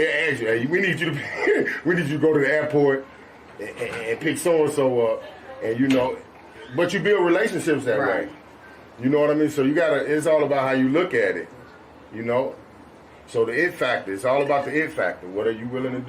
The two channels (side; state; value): both; identical; correlation 1.00